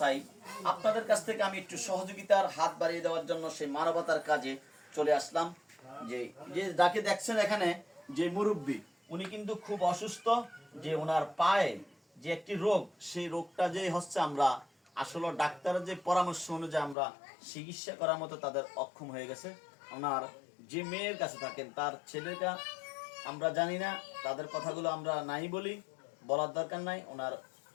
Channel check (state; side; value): drops out; right; at 16.9 s